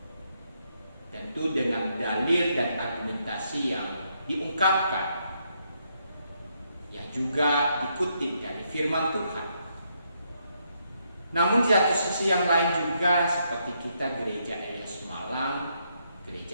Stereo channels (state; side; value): inverted; both; correlation -0.77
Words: tentu dengan dalil dan argumentasi yang diungkapkan, yang juga dikutip dari firman Tuhan. Namun di satu sisi yang lain juga, seperti kita gereja Eleos Malang,